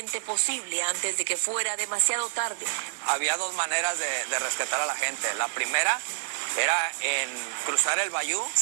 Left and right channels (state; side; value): silent; left; 60 dB below the other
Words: posible antes de que fuera demasiado tarde. Había 2 maneras de rescatar a la gente. La primera era en cruzar el bayú,